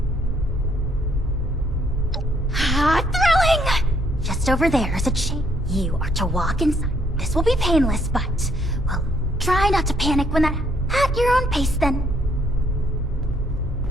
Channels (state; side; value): normal; both; correlation 0.69